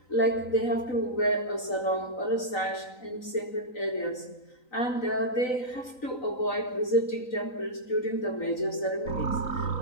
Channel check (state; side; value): late; right; 3.9 ms